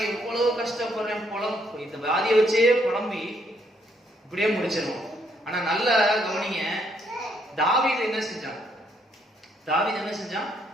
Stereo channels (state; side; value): normal; both; correlation 0.71